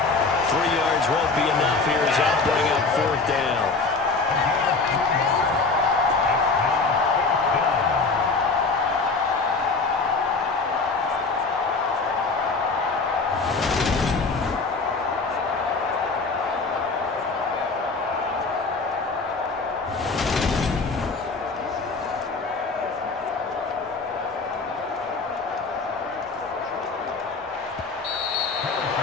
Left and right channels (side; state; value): right; quieter; 4.1 dB